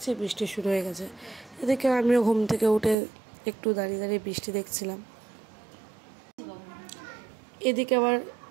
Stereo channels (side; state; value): left; drops out; at 3.0 s